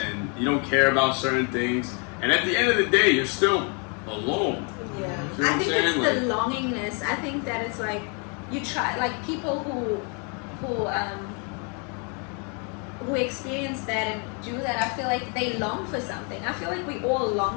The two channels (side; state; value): right; quieter; 36.4 dB